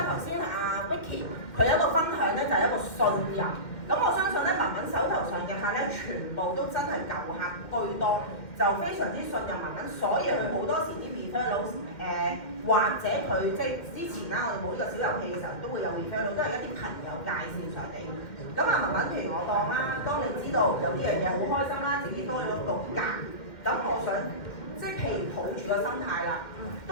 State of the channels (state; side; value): late; right; 2.1 ms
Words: 頭先阿 Vicky 佢有一個分享咧，就係一個信任。咁我相信咧，文文手頭上嘅客咧，全部都真係舊客居多，就非常之信任文文，所以佢好多時啲 referral 或者佢即係之前啦，我哋冇呢個小遊戲嘅時候，都會有 referral，都係一啲朋友介紹上嚟。咁啊，文文譬如我當啦，當你知道有呢樣嘢好開心啦，自己多咗個價，咁我想即係譬如抱住個心態啦，